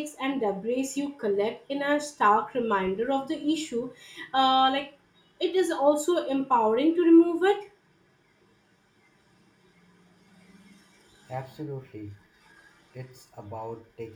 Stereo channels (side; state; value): both; identical; correlation 1.00